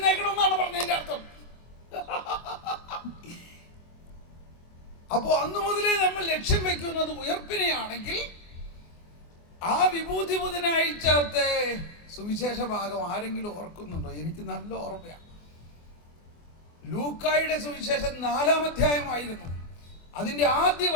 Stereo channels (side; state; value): right; late; 24 ms